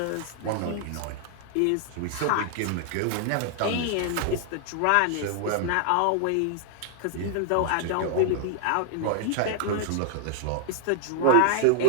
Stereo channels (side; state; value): both; different; correlation 0.00